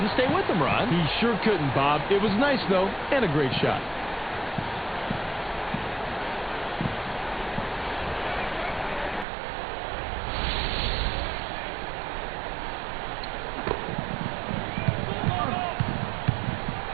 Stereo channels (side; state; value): left; drops out; at 9.2 s